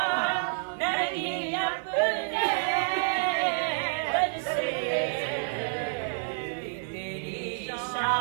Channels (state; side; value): silent; left; digital silence